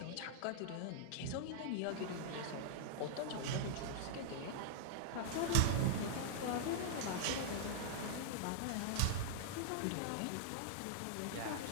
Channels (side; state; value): both; different; correlation -0.01